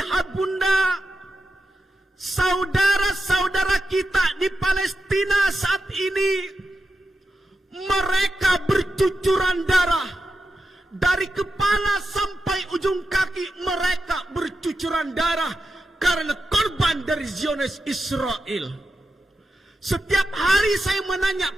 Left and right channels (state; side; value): normal; both; correlation 0.89